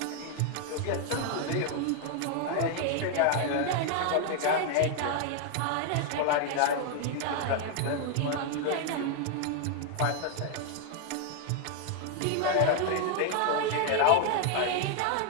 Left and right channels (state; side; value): different; both; correlation 0.00